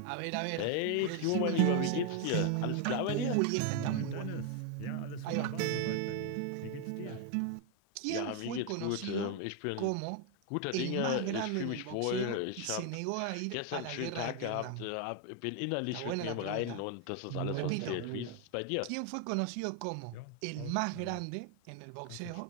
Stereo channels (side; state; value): both; different; correlation 0.01